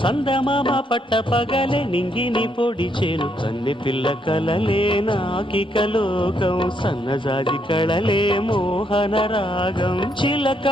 చందమామ పట్ట పగలే నింగిని పొడిచేను కన్నె పిల్ల కలలే నాకిక లోకం సన్నజాజి కళలే మోహన రాగం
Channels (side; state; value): both; normal; correlation 0.75